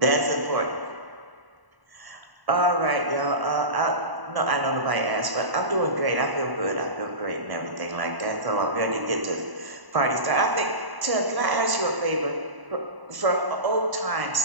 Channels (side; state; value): left; late; 1.0 ms